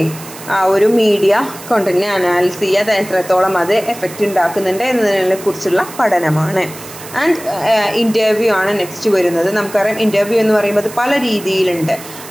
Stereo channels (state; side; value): noise; right; hiss, 15 dB below the sound